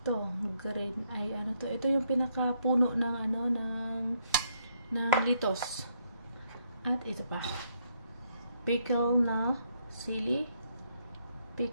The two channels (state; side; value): inverted; both; correlation -0.73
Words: green ay ano to. Ito yung pinakapuno ng ng litos. At ito pa. Pickle na sili.